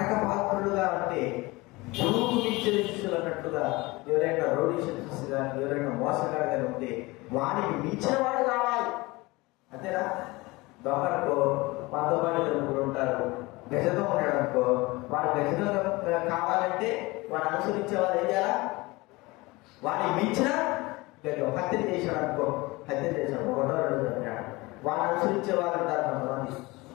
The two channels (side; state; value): right; quieter; 22.5 dB